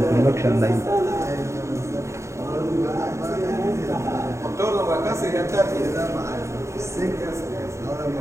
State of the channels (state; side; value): late; left; 0.14 ms